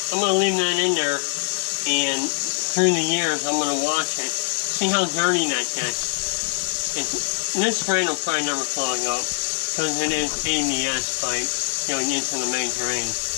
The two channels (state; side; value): silent; right; digital silence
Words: I'm going to leave that in there, and through the years I'm going to wash it. See how dirty that gets. This drain will probably never clog up, because it is ABS pipe going into the main drain.